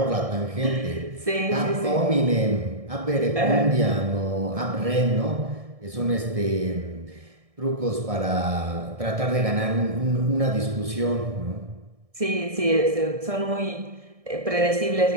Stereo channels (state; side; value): late; left; 1.6 ms